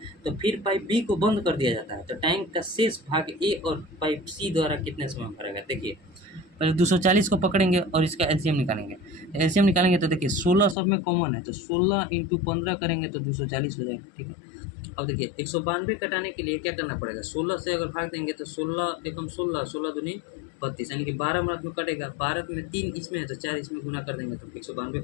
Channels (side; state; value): right; drops out; at 10.8 s